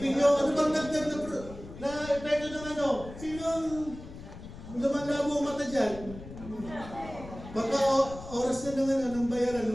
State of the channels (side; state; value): left; noise; rumble, 14 dB below the sound